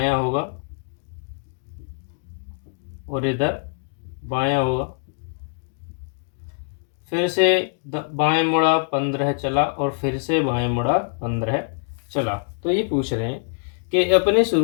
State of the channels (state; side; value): silent; right; digital silence